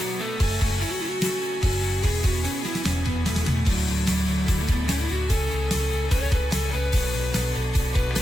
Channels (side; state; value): both; normal; correlation 0.88